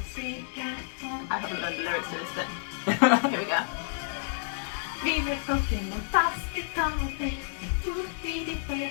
I haven't learned the lyrics to this bit. Here we go. Vive Pokémon fantastico, tutti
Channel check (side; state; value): right; silent; digital silence